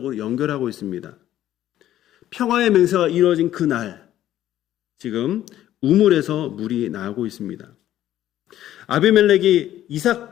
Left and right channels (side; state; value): right; quieter; 12.7 dB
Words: 연결하고 있습니다. 평화의 맹세가 이루어진 그 날, 지금 우물에서 물이 나오고 있습니다. 아비멜렉이